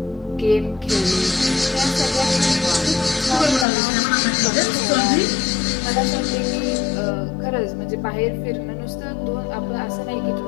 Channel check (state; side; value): drops out; right; at 3.7 s